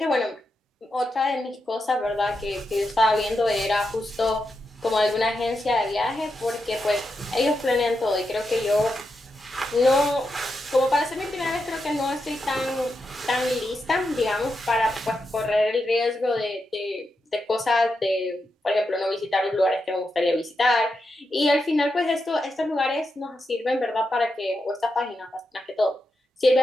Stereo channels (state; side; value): normal; both; correlation 0.86